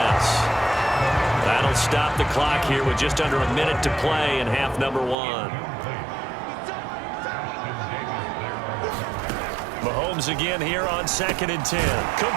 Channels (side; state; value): left; drops out; at 5.2 s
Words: That'll stop the clock here with just under a minute to play in half number 1. Mahomes again here on 2nd and 10.